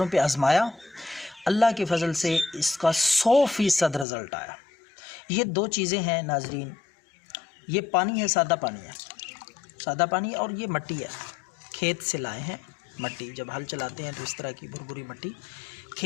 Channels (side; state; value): right; drops out; at 4.0 s